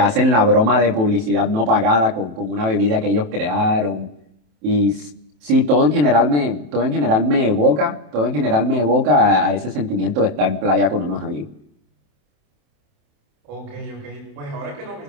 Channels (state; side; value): late; left; 27 ms